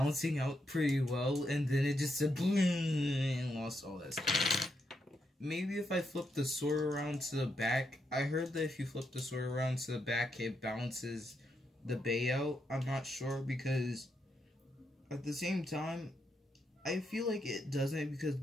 out pretty well, and then it just said boom and lost all that stuff. Maybe if I flip the sword around to the back, I heard that if you flip the sword around to the back, it balances the Bay out. I'm not sure, because at the same time, I feel like it doesn't, because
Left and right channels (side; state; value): both; normal; correlation 0.81